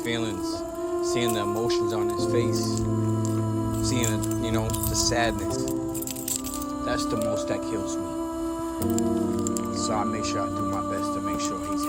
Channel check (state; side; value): identical; both; correlation 1.00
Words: seeing the emotions on his face, seeing, the sadness. That's the most that kills me. So I make sure I do my best to make sure he's